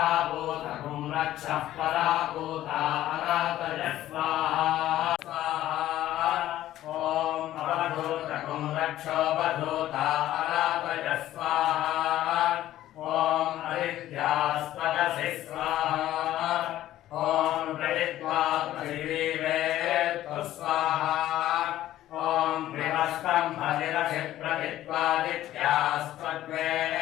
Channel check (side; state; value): right; quieter; 13.7 dB